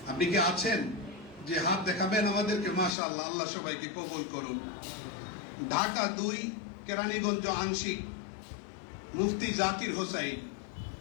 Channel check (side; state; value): right; drops out; at 2.9 s